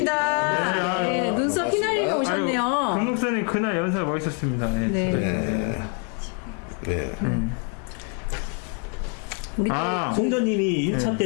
네, 눈썹 휘날리며 오셨네요. 금목사님 그날 연설 멋있었습니다. 네. 우리 송전님이 1차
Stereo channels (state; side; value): quieter; right; 38.4 dB